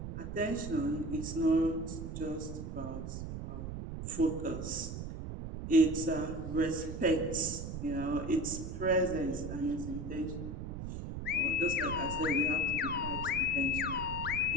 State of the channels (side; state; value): right; noise; rumble, 6 dB below the sound